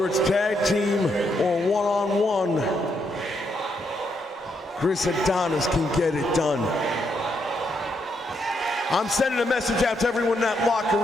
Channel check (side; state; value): both; normal; correlation 0.77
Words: it's tag team or one-on-one, Chris Adonis can get it done. I'm sending a message out to everyone in that locker